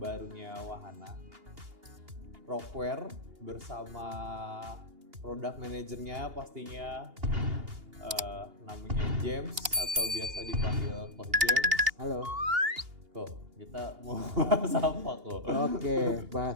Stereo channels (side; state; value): left; late; 2.8 ms